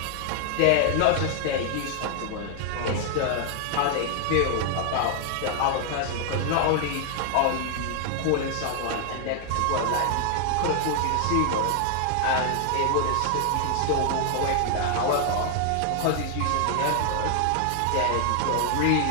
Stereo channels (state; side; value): different; both; correlation 0.00